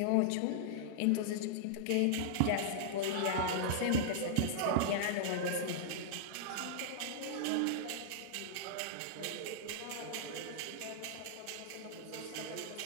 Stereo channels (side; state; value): both; different; correlation -0.02